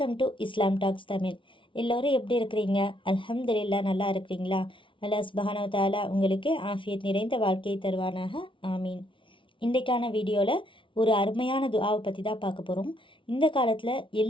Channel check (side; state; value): right; late; 0.25 ms